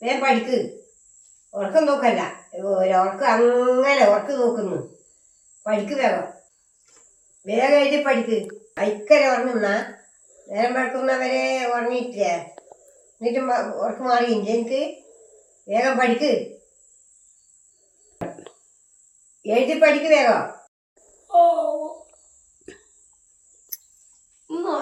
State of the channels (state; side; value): identical; both; correlation 1.00